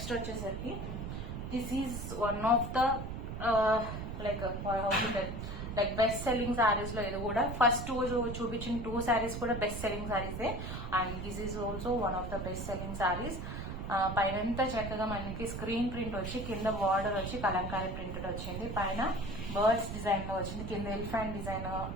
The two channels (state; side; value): noise; right; rumble, 6 dB below the sound